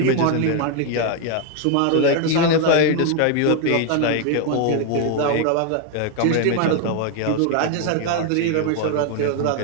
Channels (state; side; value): different; both; correlation 0.01